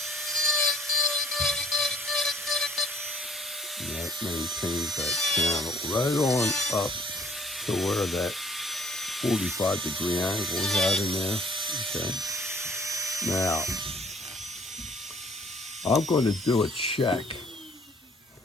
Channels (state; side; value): normal; both; correlation 0.59